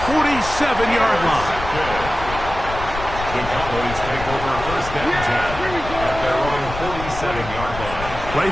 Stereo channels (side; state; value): left; noise; rumble, 9 dB below the sound